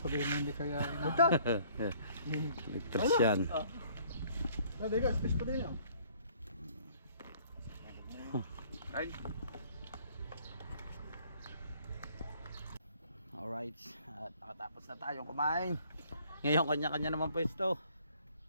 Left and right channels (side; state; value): both; inverted; correlation -0.59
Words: mo hindi kaya. Ligtas yan. Dali ka, space pa din yan. Ay. Alright, at nakatapos na tayong kumain. Ngayon kanya-kanya naman pwesto.